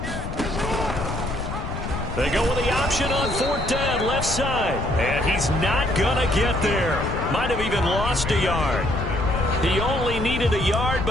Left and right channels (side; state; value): left; noise; rumble, 5 dB below the sound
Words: They go with the option on 4th down, left side. And he's not going to get there. Might have even lost a yard. He only needed a yard,